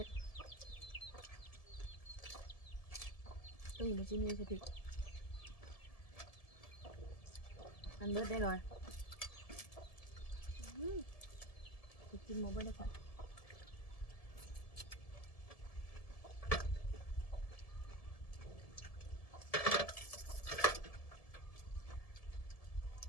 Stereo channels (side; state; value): right; late; 1.7 ms